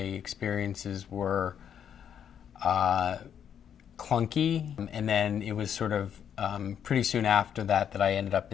were clunky, and then it was sort of pretty soon after that I ended up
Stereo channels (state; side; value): quieter; right; 8.7 dB